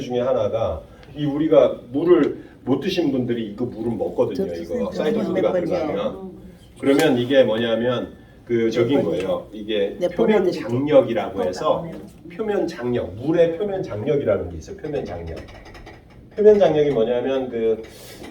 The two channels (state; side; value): identical; both; correlation 1.00